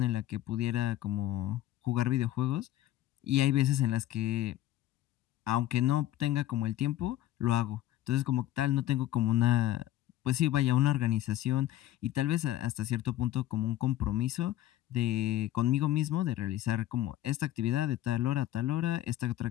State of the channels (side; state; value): right; quieter; 13.8 dB